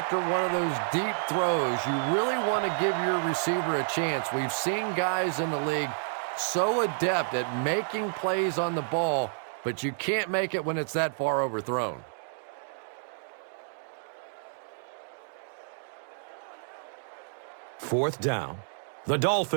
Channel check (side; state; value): left; silent; digital silence